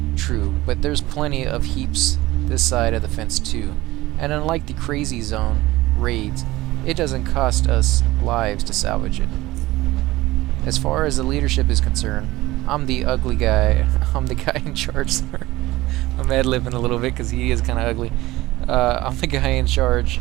True, but there's plenty of heaps this side of the fence too, and unlike the crazy zone raids, it doesn't cost us lives to salvage it. As far as the leadership is concerned, I'm the ugly guy. I'm the guy in charge. Sorry. I'm ad-libbing a little bit because he is kind of ugly. I'm the guy in charge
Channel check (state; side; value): quieter; left; 18.3 dB